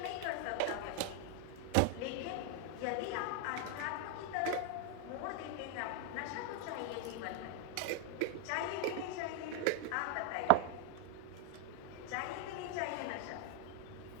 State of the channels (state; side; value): different; both; correlation 0.00